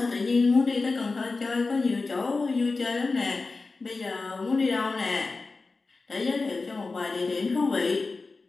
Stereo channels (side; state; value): right; quieter; 3.9 dB